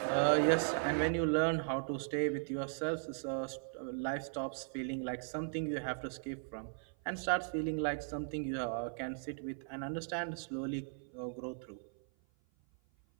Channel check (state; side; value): silent; left; 53 dB below the other